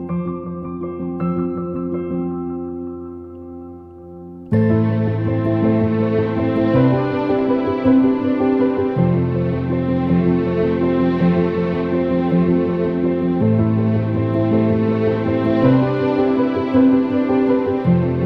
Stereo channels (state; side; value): identical; both; correlation 1.00